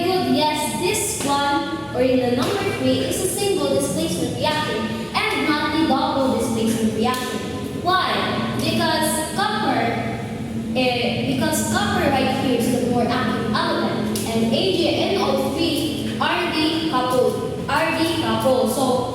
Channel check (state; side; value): identical; both; correlation 1.00